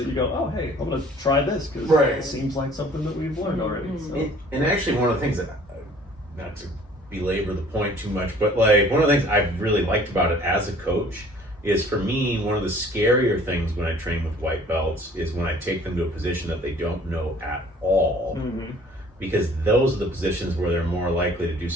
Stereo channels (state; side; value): normal; both; correlation 0.53